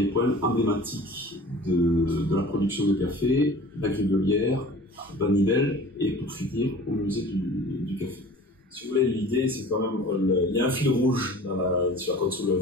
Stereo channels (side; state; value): both; normal; correlation 0.43